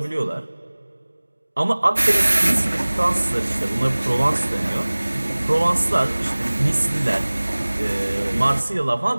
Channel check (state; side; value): inverted; both; correlation -1.00